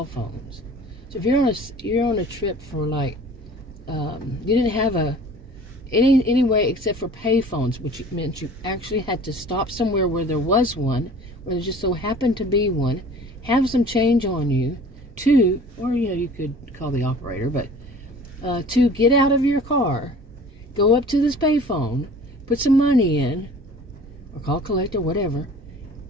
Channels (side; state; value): both; normal; correlation 0.46